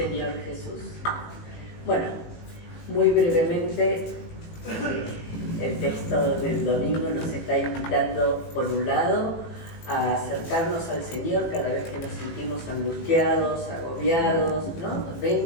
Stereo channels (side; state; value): right; late; 18 ms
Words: Jesús. Bueno, muy brevemente, el texto del domingo nos está invitando, por un lado, a acercarnos al Señor cada vez que nos sentimos angustiados, agobiados, ¿no?